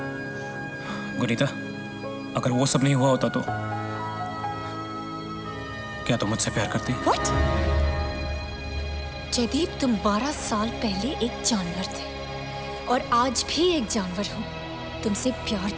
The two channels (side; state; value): both; identical; correlation 1.00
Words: गुनीता, अगर वो सब नहीं हुआ होता तो क्या तुम मुझसे प्यार करती? What? जयदीप, तुम 12 साल पहले एक जानवर थे और आज भी एक जानवर हो। तुमसे प्यार